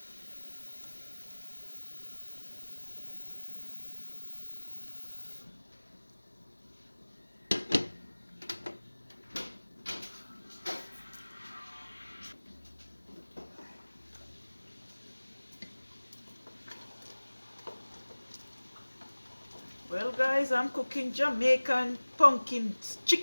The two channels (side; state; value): both; inverted; correlation -1.00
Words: Well guys, I'm cooking Jamaican pumpkin